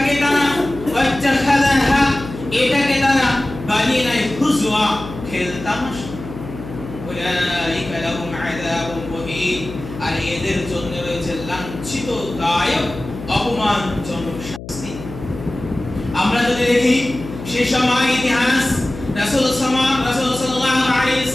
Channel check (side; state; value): left; noise; hum, 12 dB below the sound